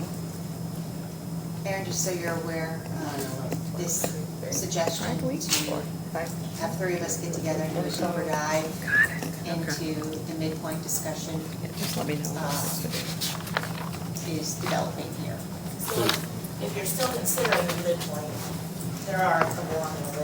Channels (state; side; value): identical; both; correlation 1.00